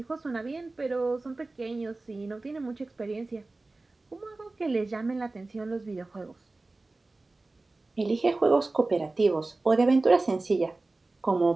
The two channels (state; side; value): quieter; left; 3.2 dB